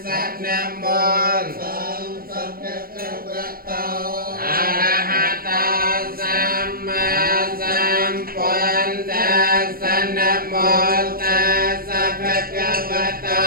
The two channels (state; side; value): late; left; 0.43 ms